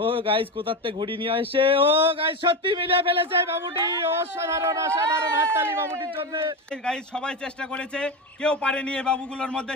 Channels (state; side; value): normal; both; correlation 0.18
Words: ও গাইজ কোথাতে ঘুড়ি নিয়ে আসে। ও গাইজ সত্যি মিলিয়ে ফেলেছে বাবুটি। অসাধারণ অসাধারণ, হাততালি বাবুটির জন্য। গাইজ সবাই চেষ্টা করেছে, কেউ পারেনি এই বাবুগুলোর মধ্যে,